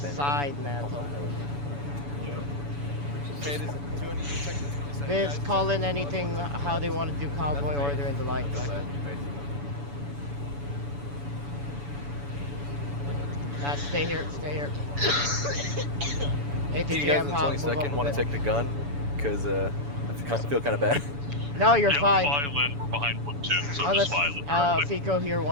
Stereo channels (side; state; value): left; late; 7.0 ms